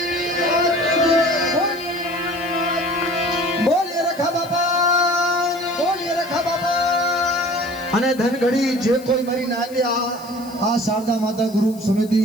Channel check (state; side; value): noise; left; hiss, 21 dB below the sound